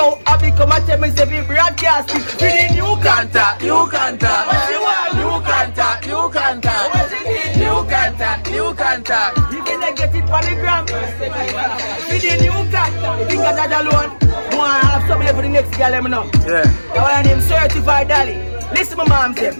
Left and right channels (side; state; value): both; inverted; correlation -1.00